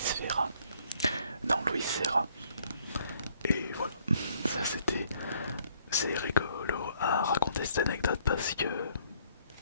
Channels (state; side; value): inverted; both; correlation -0.64